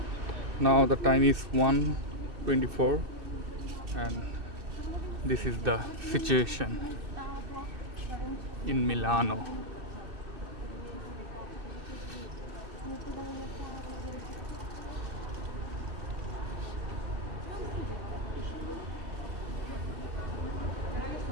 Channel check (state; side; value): late; left; 2.6 ms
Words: Now the time is 1:24 and this is the situation in Milano.